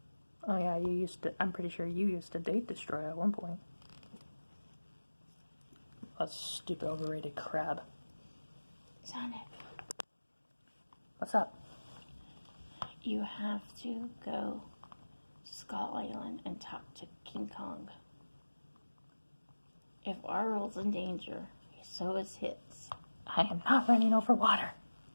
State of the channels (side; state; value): both; inverted; correlation -1.00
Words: Oh yeah, I'm pretty sure you used to date Destroyer at one point. A stupid overrated crab. Sonic, What's up? you have to go to Skull Island and talk to King Kong. If our world's in danger, so is his. I am not running over water.